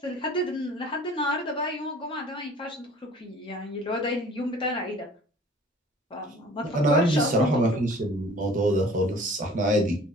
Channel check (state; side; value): normal; both; correlation 0.48